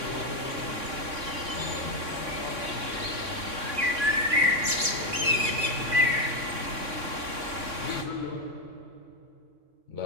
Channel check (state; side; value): late; left; 3.6 ms